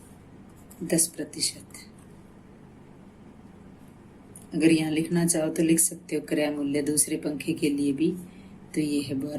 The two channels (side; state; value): both; identical; correlation 1.00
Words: 10%। अगर यहाँ लिखना चाहो तो लिख सकते हो क्रय मूल्य दूसरे पंखे के लिए भी, तो ये है